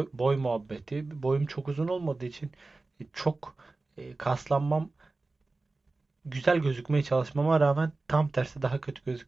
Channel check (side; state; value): left; quieter; 3.4 dB